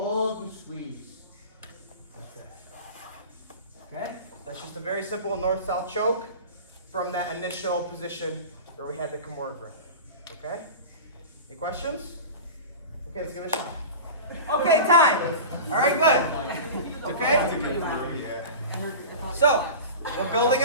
and squeeze. Okay, that's just a very simple north-south choke from that initial position where we had the KIMURA grip. Okay? Any questions? Okay, let's give it a shot. Okay, time. All right, good. Okay? So, we're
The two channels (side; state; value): both; inverted; correlation -0.32